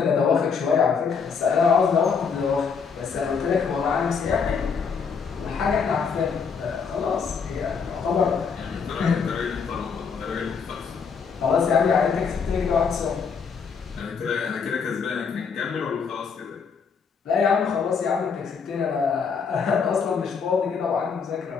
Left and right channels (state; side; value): quieter; right; 5.9 dB